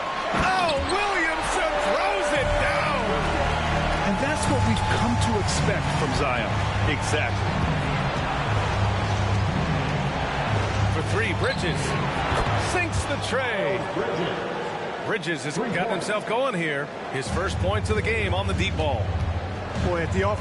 Oh, Williamson throws it down. And that's what we've come to expect from Zion. Exactly. For 3, Bridges sinks the tray. Bridges has gotten himself going here. His first points of the game on the deep ball. Boy, at the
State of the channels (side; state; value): both; identical; correlation 1.00